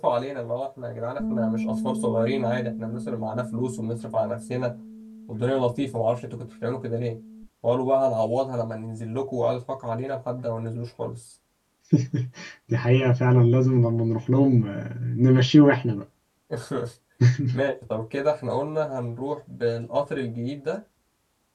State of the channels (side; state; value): both; identical; correlation 1.00